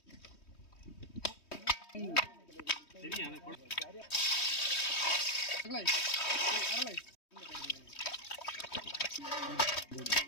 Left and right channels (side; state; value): right; late; 3.2 ms